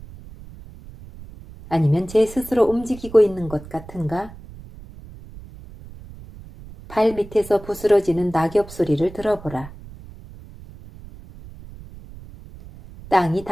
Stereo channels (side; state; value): right; noise; rumble, 17 dB below the sound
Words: 아니면 제 스스로 움직이고 있는 것 같은가? 발 밑에서 부스러지는 낙엽 소리를 들어보라. 땅이